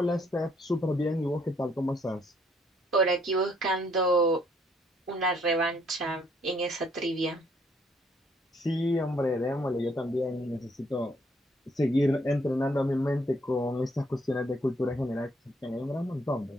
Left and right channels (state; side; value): normal; both; correlation 0.68